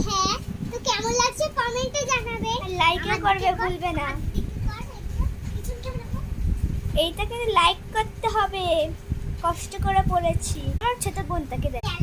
হ্যাঁ, তো কেমন লাগছে কমেন্টে জানাবে, লাইকও করবে ভুলবে না। এইটা কিন্তু লাইক করতে হবে, কষ্ট করে পরেছি। আমার ছোট বোনটাকে দেখ।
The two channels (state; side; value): identical; both; correlation 1.00